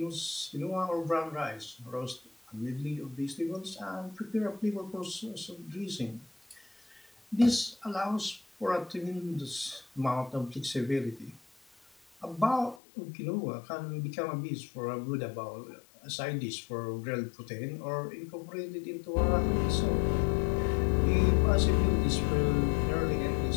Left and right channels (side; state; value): right; drops out; at 12.8 s